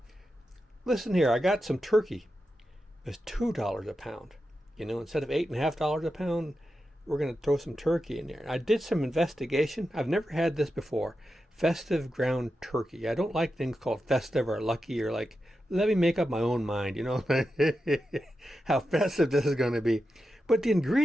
listen here, I got some turkey. It was $2 a pound. You know, instead of $8.5 a pound, we're going to throw some turkey in there. I did some investigation. I've never had this before. Festive ground turkey. I don't like things called festive or lucky or like, let me make up my own mind, you know, how festive this is going to be. But the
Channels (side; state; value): both; normal; correlation 0.90